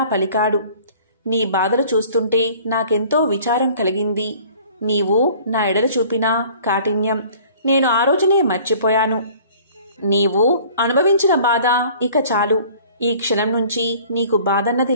పలికాడు. నీ బాధలు చూస్తుంటే నాకెంతో విచారం కలిగింది. నీవు నా ఎడల చూపిన కాఠిన్యం నేను ఆ రోజునే మర్చిపోయాను. నీవు అనుభవించిన బాధ ఇక చాలు. ఈ క్షణం నుంచి నీకు బాధన్నది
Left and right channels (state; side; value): inverted; both; correlation -0.51